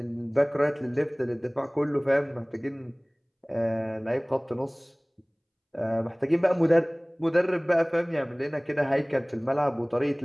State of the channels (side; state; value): both; identical; correlation 1.00